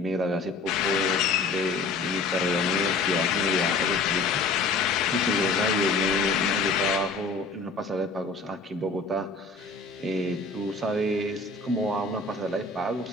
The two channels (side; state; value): right; quieter; 3.7 dB